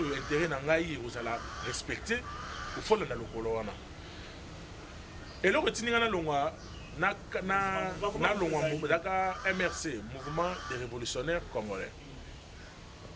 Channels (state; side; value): identical; both; correlation 1.00